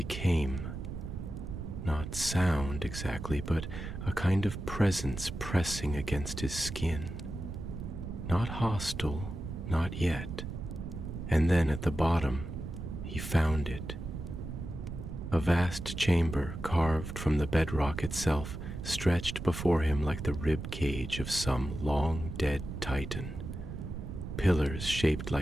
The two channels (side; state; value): right; noise; rumble, 7 dB below the sound